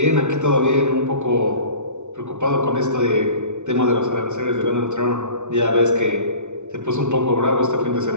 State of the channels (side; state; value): left; late; 0.83 ms